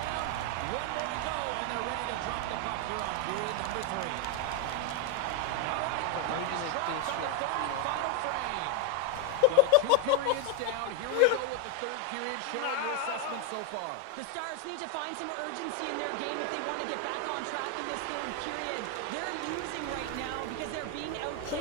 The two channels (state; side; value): different; both; correlation 0.01